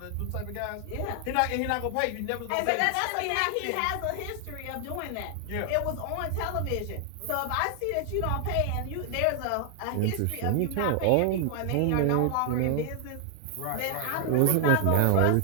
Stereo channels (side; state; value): both; different; correlation 0.00